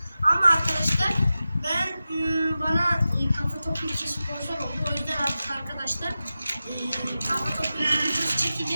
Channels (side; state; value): both; inverted; correlation -0.93